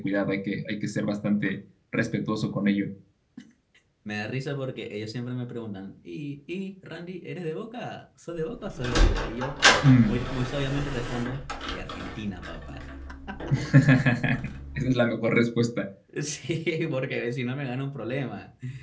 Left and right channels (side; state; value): both; identical; correlation 1.00